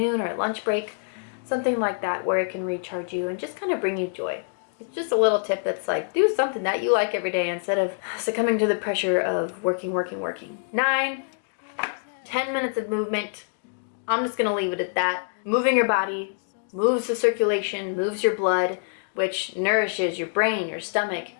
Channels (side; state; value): right; silent; digital silence